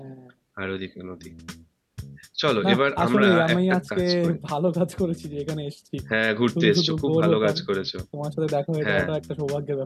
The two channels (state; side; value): identical; both; correlation 1.00